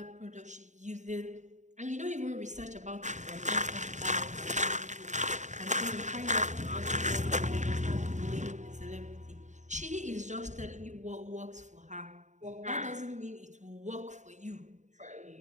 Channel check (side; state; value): left; late; 0.35 ms